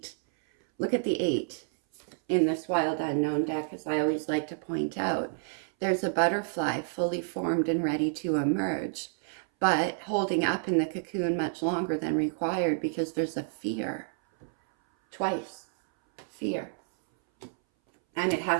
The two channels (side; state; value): left; silent; 58 dB below the other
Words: look at the 8 in this Wild Unknown deck, as I always like to point out. There's a butterfly fully formed and ready to emerge, but holding up in the cocoon much longer than required because there's a fear. Twice. Fear. And it